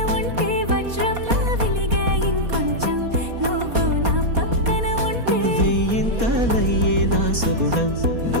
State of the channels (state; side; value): late; left; 4.2 ms